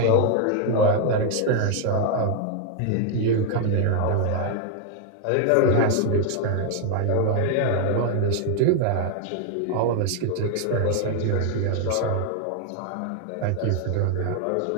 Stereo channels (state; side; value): different; both; correlation 0.00